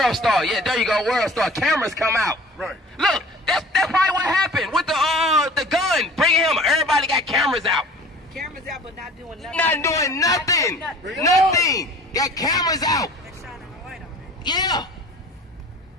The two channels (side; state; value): both; normal; correlation 0.45